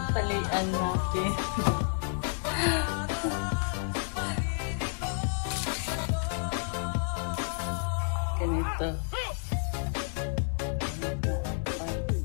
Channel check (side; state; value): right; silent; 58 dB below the other